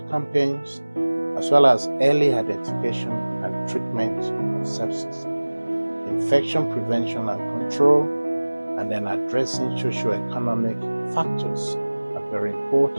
campaigns, as well as early identification and treatment of sepsis, infection prevention and control, and then addressing socio-economic factors are very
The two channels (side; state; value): both; inverted; correlation -1.00